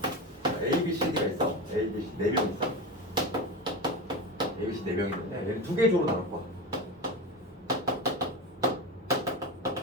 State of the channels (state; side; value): normal; both; correlation 0.23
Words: A, B, C, D가 있어. A, B, C 4명 있어. A, B, C 4명이 있는데 얘를 두 개 조로 나눌 거야.